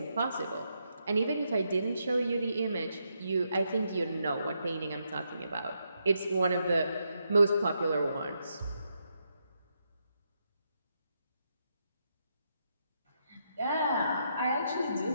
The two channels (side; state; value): both; inverted; correlation -0.80